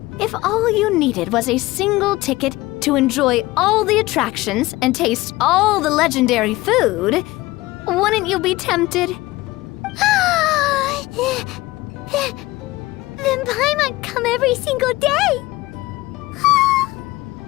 if all you needed was a single ticket to enjoy all the attractions and taste all the legendary food. Wouldn't you be tempted? Then Paimon come every single day.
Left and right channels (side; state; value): right; quieter; 19.3 dB